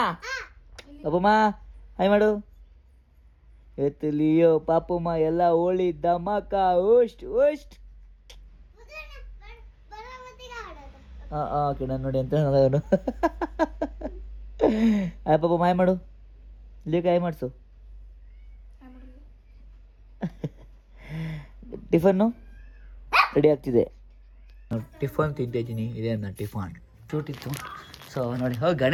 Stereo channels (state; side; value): identical; both; correlation 1.00